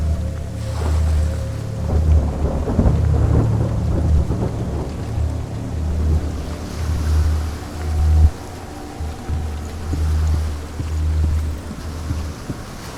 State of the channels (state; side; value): identical; both; correlation 1.00